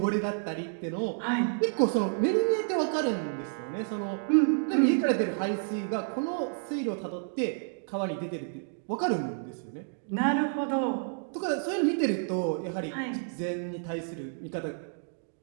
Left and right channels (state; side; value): silent; left; digital silence